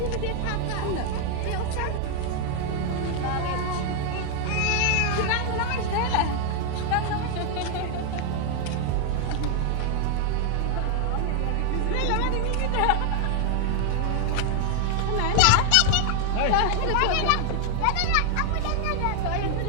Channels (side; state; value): both; different; correlation 0.00